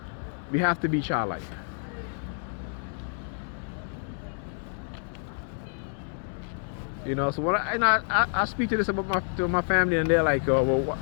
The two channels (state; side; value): silent; right; 59 dB below the other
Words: We have to be childlike. You know, so when I speak to this about to my family, and they're like, oh, well,